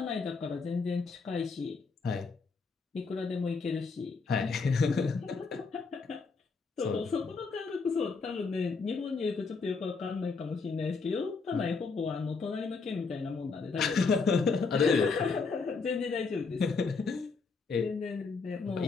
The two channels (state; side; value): quieter; right; 4.6 dB